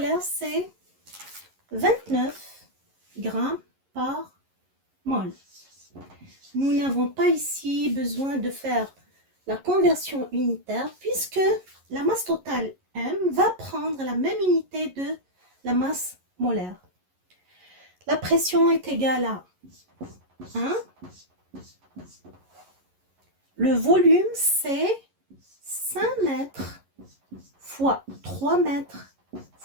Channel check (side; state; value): left; late; 11 ms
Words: c'est 29 grammes par mol. Nous n'avons pas ici besoin de faire la conversion unitaire puisque la masse totale M va prendre la même unité de la masse molaire. La pression est égale à 1. Le volume, c'est 5 mètres fois 3 mètres